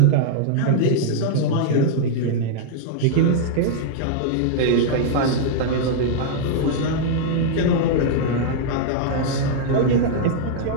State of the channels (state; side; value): different; both; correlation -0.02